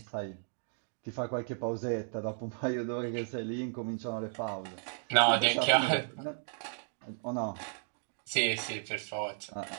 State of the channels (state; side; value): silent; left; digital silence